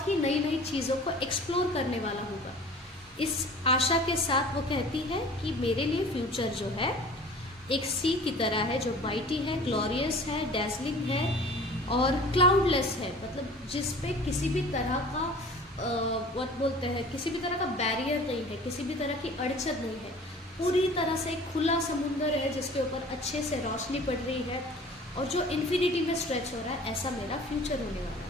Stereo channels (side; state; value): both; normal; correlation 0.45